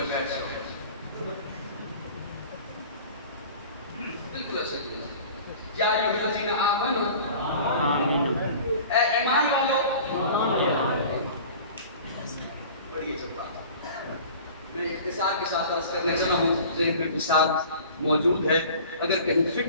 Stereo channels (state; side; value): inverted; both; correlation -0.43